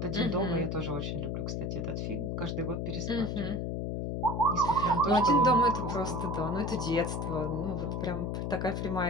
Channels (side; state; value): left; noise; hum, 2 dB below the sound